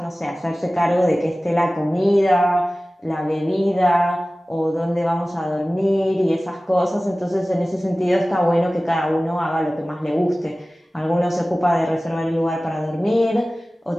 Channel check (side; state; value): both; normal; correlation 0.97